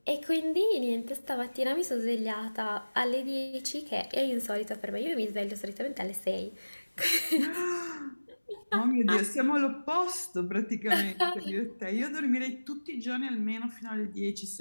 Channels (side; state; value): both; inverted; correlation -1.00